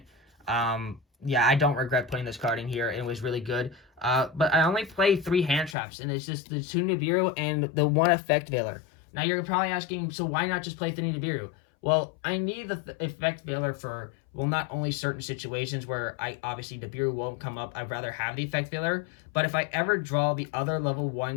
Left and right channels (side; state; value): right; drops out; at 5.8 s